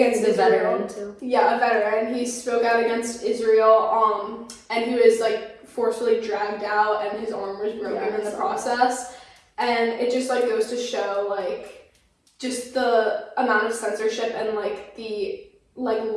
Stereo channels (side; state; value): both; identical; correlation 1.00